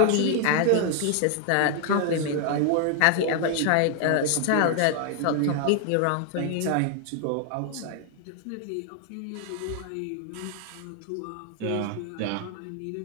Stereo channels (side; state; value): both; different; correlation 0.00